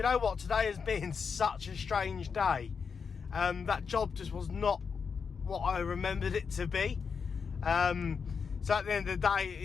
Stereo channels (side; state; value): right; quieter; 5.9 dB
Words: know what? Today has been such a strange day. That job just was not what I remembered it to be. So at the end of the day,